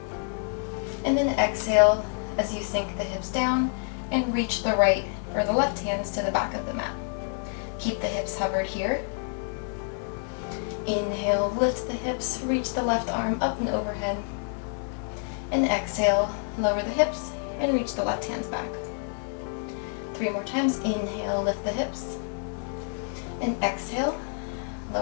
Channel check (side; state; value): right; silent; 56 dB below the other